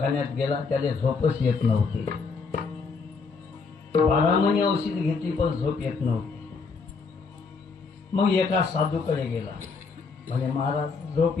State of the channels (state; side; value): quieter; right; 4.8 dB